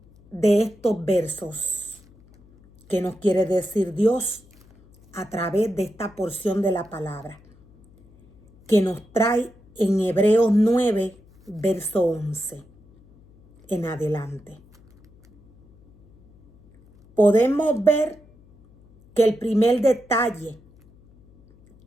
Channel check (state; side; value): noise; left; hum, 28 dB below the sound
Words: de estos versos? ¿Qué nos quiere decir Dios a través de esta porción de la palabra que nos trae en Hebreos 9, verso 11 en adelante? Podemos ver que el primer detalle